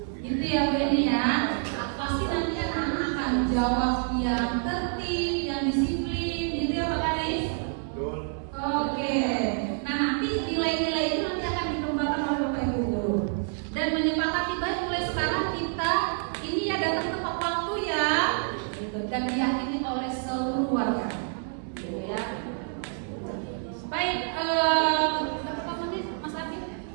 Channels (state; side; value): silent; left; 60 dB below the other